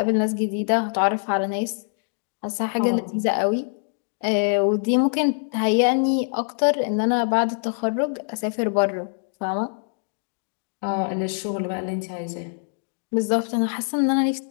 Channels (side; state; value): right; silent; digital silence